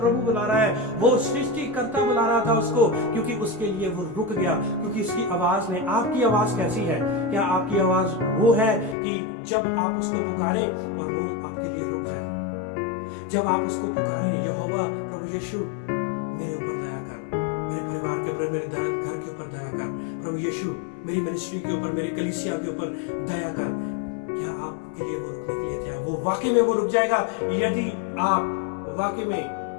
बुला रहा है। वो सृष्टिकर्ता बुला रहा था उसको, क्योंकि उसके लिए वो रुक गया, क्योंकि उसकी आवाज ने। आपकी आवाज कैसी है? क्या आपकी आवाज वो है कि जब आप उसको पुकारें और वो आपके लिए रुक जाए? जब आप उसको पुकारें, यहोवा प्रभु यीशु मेरे ऊपर दया कर, मेरे परिवार के ऊपर, मेरे घर के ऊपर दया कर, प्रभु यीशु मेरी मिनिस्ट्री के ऊपर, मेरी कलीसिया के ऊपर दया कर, क्या आपके लिए वो रुकने के लिए तैयार? वो वाकई में वो रुक जाएगा यदि आप वाकई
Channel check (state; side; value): drops out; right; at 9.0 s